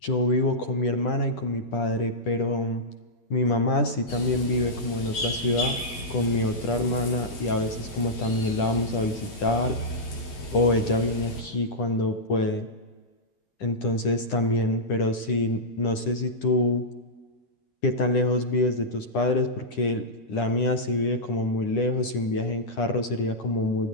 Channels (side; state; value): right; late; 10 ms